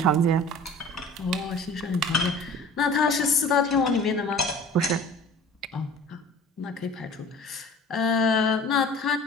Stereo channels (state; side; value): normal; both; correlation 0.43